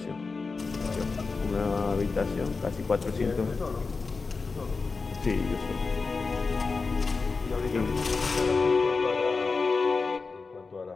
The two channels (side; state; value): right; quieter; 4.3 dB